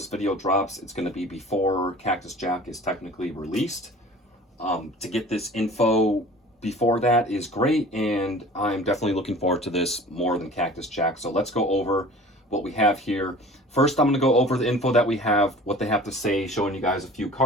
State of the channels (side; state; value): both; normal; correlation 0.44